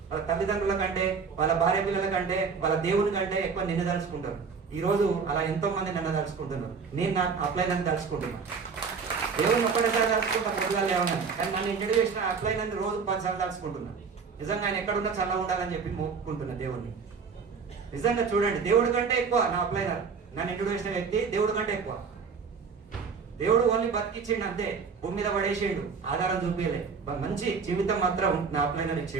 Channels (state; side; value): quieter; left; 5.5 dB